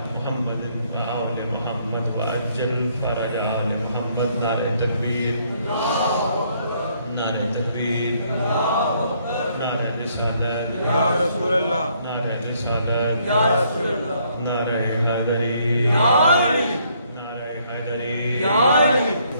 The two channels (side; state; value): both; inverted; correlation -0.68